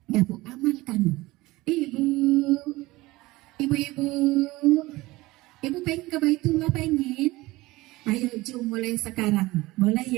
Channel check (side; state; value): left; quieter; 19.9 dB